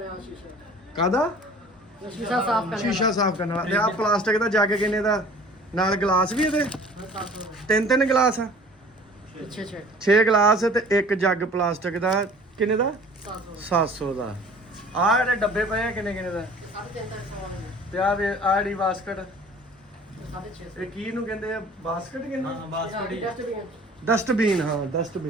ਕਾਹਦਾ? ਸ਼ੀਸ਼ਾ ਸਾਫ਼ ਕਰਨ ਵਾਲਾ। ਤੇ ਆ ਪਲਾਸਟਿਕ ਦਾ ਜੱਗ ਕਿੰਨੇ ਦਾ? ਨਾਲ ਗਲਾਸ ਵੀ ਇਹਦੇ 3 ਗਲਾਸ ਆ। 6 ਗਲਾਸ ਤੇ 1 ਜੱਗ ਪਲਾਸਟਿਕ ਦਾ ਕਿੰਨੇ ਦਾ 700 ਦਾ। ਆ ਜਿਹੜੇ ਡੱਬੇ ਪਏ ਆ ਕਿੰਨੇ ਕਿੰਨੇ ਦਾ? ਤੇ ਆ ਵੇ ਆ ਜਿਹੜੀ ਬਾਸਕਟ ਇਹ ਕੀ ਨੂੰ ਕਹਿੰਦੇ ਆ? ਬਾਸਕਟ ਕਹਿੰਦੇ ਹਾਂ ਬਾਸਕਟ ਹੀ ਹੈ। ਡਸਟਬਿਨ। ਹਾਂ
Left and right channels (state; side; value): normal; both; correlation 0.48